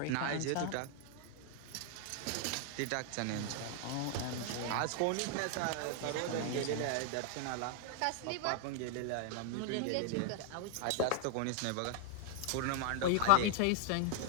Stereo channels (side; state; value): both; different; correlation 0.00